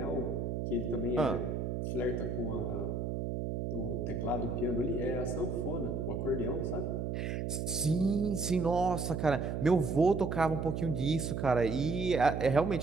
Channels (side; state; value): right; noise; hum, 2 dB below the sound